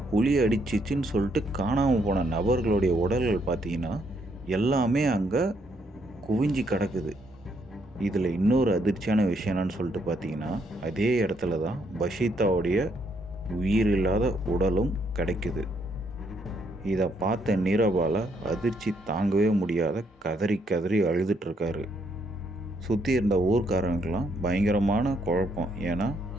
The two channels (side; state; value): both; normal; correlation 0.73